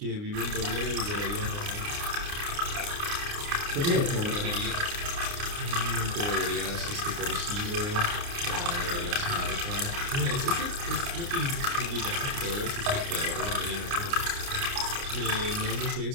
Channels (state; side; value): late; left; 29 ms